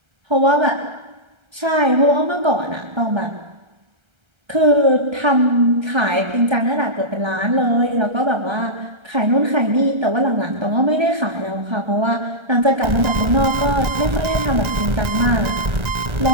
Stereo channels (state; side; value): late; left; 1.3 ms